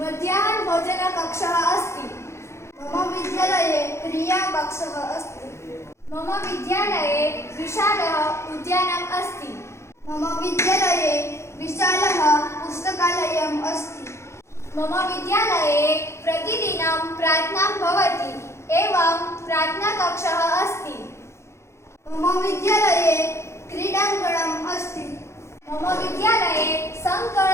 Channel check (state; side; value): late; right; 0.13 ms